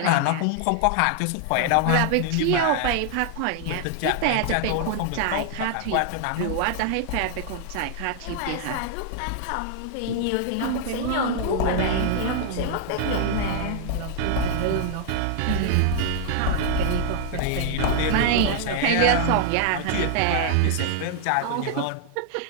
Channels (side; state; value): both; different; correlation 0.00